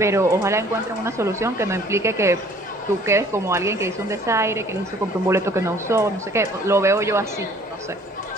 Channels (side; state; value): both; normal; correlation 0.54